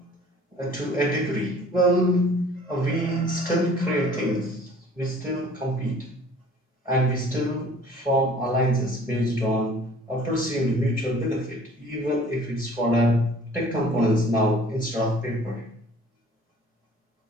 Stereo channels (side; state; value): both; normal; correlation 0.51